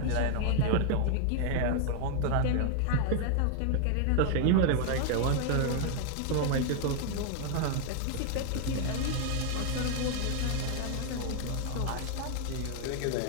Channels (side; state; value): both; different; correlation 0.00